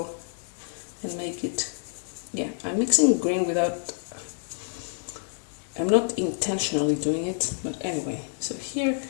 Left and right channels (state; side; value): silent; right; digital silence